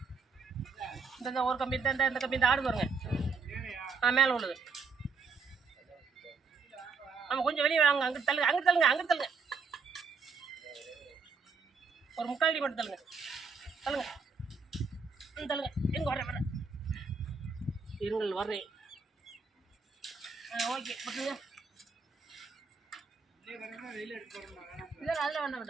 இந்த ஒரு கம்பி இந்த கம்பி இந்த ஆடு பாருங்க. மேலே உள்ளது. ஆமாம் கொஞ்சம் வெளியே வாங்க. அங்கிட்டு தள்ளுங்க அங்கிட்டு தள்ளுங்க அங்கிட்டு தள்ளுங்க. ஒரு முக்கால் அடி மட்டும் தள்ளுங்க. தள்ளுங்க தள்ளுங்க. எங்கே வரேன் இருங்கள் வர்றேன். ஓகே பட்டுங்க. இல்லை அதில் வேண்டாம்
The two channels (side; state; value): left; quieter; 4.8 dB